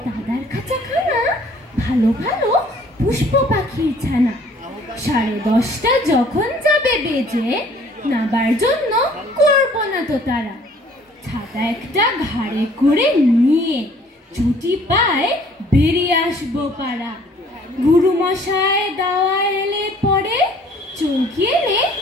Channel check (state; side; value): normal; both; correlation 0.56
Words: দাদার খাঁচাখানা ভালো ভালো পুষ্প পাখির ছানা। 10:30 যখন যাবে বেজে, নাবার জন্য করবো না তো তারা। ছাতা একটা ঘাড়ে করে নিয়ে ছুটি পায় বেরিয়ে আসবো পাড়া। গুরুমশাই দাওয়া এলে পরে চৌকি এনে